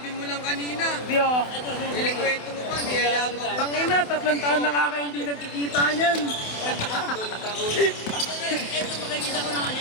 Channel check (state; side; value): late; right; 28 ms